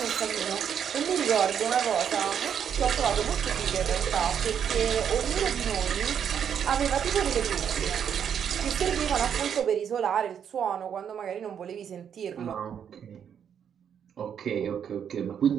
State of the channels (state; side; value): quieter; left; 8.3 dB